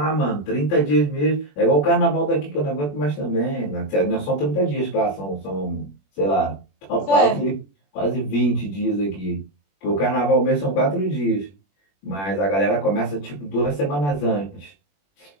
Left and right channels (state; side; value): late; right; 21 ms